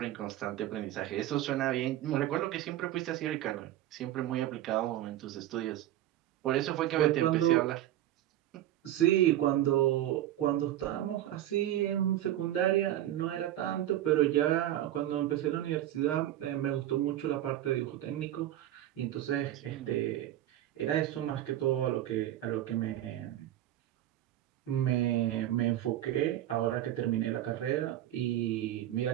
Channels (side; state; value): left; quieter; 13.2 dB